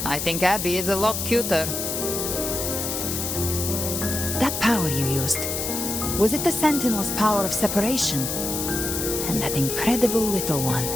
I think Abby is a lot cuter. That power you used, was it the Sentinel's power of separation? And that incredible little one.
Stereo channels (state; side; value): noise; left; hiss, 3 dB below the sound